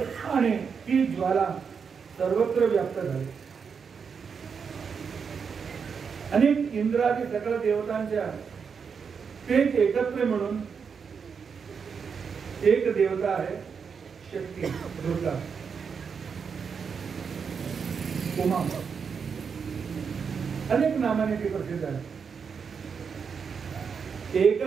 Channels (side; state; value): left; quieter; 6.2 dB